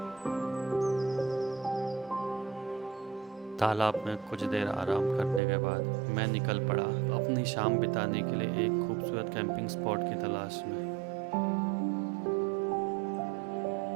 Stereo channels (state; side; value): drops out; left; at 5.4 s